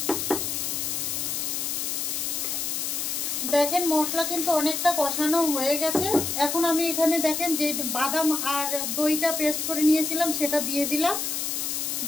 দেখেন মশলা কিন্তু অনেকটা কষানো হয়ে গেছে। এখন আমি এখানে দেখেন যে বাদাম আর দইটা পেস্ট করে নিয়েছিলাম সেটা দিয়ে দিলাম,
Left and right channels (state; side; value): noise; left; hiss, 1 dB below the sound